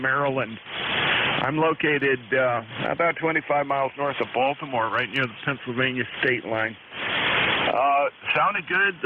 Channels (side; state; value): both; identical; correlation 1.00